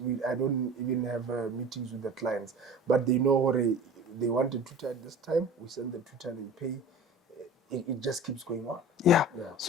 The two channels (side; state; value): both; normal; correlation 0.38